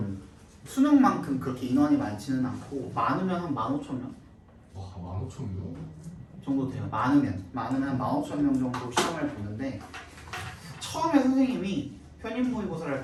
수능만큼 그렇게 인원이 많지는 않고 많으면 한 15,000명 와 15,000명? 정도 돼요. 많으면 한 15,000명 정도 시험을 보는데 처음에 선생님이 편입 모의고사를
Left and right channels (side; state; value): both; identical; correlation 1.00